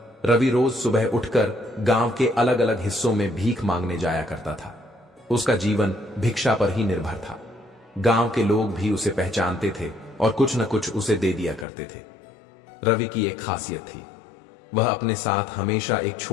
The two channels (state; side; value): drops out; right; at 11.7 s